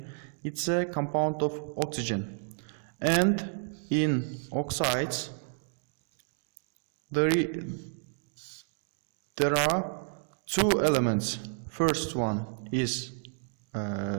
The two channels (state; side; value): silent; left; digital silence